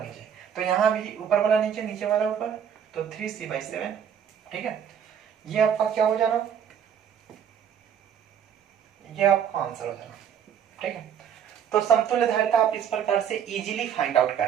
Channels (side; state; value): left; quieter; 8.5 dB